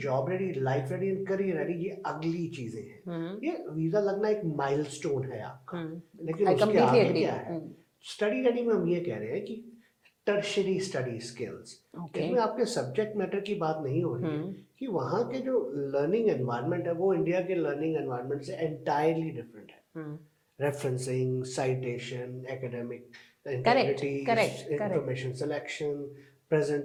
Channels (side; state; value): both; identical; correlation 1.00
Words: job ready, life ready and career ready ये अगली चीजें हैं. ये वीजा लगना एक माइलस्टोन है आपका, लेकिन उसके आगे क्या है? स्टडी रेडी में हम ये कह रहे हैं कि टर्शरी स्टडी स्किल्स. इसमें आपके सब्जेक्ट मैटर की बात नहीं हो रही है कि वहाँ के जो लर्निंग एनवायरनमेंट है वो इंडिया के लर्निंग एनवायरनमेंट से एंटायरली डिफरेंट है. Referencing, citation, academic integrity, information selection,